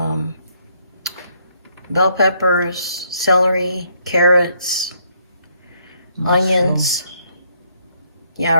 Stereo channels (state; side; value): inverted; both; correlation -0.70